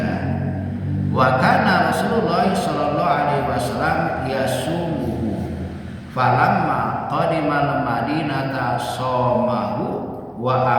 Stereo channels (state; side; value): identical; both; correlation 1.00